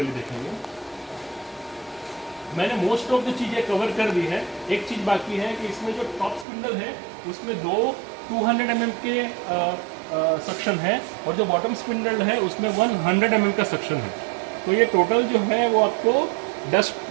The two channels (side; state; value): left; drops out; at 6.5 s